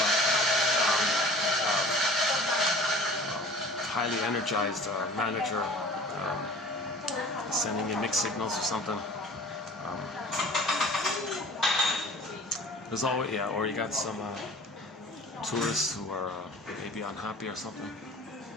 highly energized manager sending you mixed signals or something. There's always, yeah, or you got some tourists who are maybe unhappy or something.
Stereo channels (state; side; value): normal; both; correlation 0.44